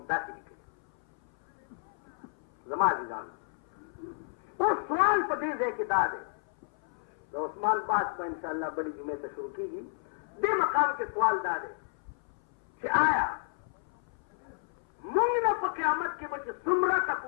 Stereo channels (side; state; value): right; silent; 57 dB below the other